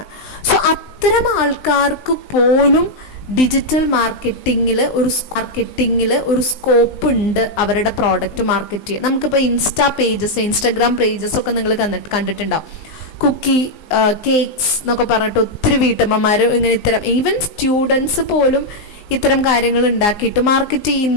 സോ അത്തരം ആൾക്കാർക്ക് പോലും ഡിജിറ്റൽ മാർക്കറ്റിങ്ങിൽ ഒരു സ്കോപ്പ് ഉണ്ട് അവരുടെ പ്രോഡക്റ്റ് മാർക്കറ്റ് ചെയ്യാൻ. നമുക്കിപ്പോൾ ഇൻസ്റ്റാഗ്രാം പേജസ് ഒക്കെ നിങ്ങൾ കണ്ടിട്ടുണ്ടാവും. കുക്കി കേക്ക്സ് എന്നൊക്കെ പറഞ്ഞിട്ട് ഒത്തിരി വീട്ടമ്മമാർ ഇങ്ങനെ ഇത്തരം ഈവൻ സ്റ്റുഡൻസ് പോലും ഇത്തരം കാര്യങ്ങൾ ഉണ്ടാക്കിയിട്ട് മാർക്കറ്റ്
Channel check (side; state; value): right; late; 19 ms